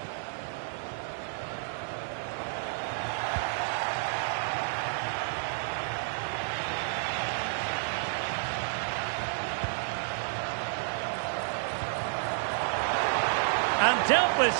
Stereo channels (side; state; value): left; silent; 57 dB below the other